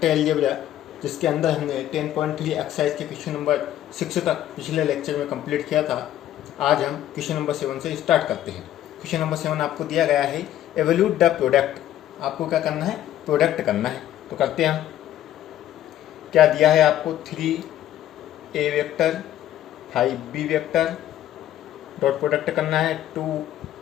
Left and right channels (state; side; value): quieter; right; 12.3 dB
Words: अलजेब्रा, जिसके अंदर हमने 10.3 एक्सरसाइज के क्वेश्चन नंबर 6 तक पिछले लेक्चर में कंप्लीट किया था। आज हम क्वेश्चन नंबर 7 से स्टार्ट करते हैं। क्वेश्चन नंबर 7 आपको दिया गया है एवल्यूट द प्रोडक्ट। आपको क्या करना है? प्रोडक्ट करना है। तो करते हैं हम। क्या दिया है आपको? 3a vector 5b vector dot product करना है